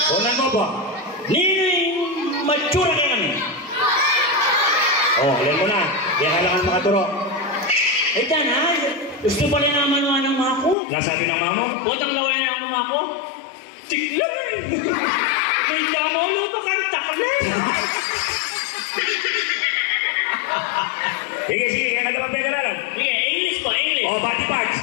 Unan mo po. Matsura kayo kami. Alam mo na. Kaya kailangan makaturo. Eh, dana, gusto pala naman ng mga ko. Nasabi ng mama? Botang daw kayo ng mga ko. Tiglay! May damolo pa kang taklan. Sige, kaya ka naman pagkaralan. Sige, English po, English. Body parts.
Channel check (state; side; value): drops out; right; at 10.8 s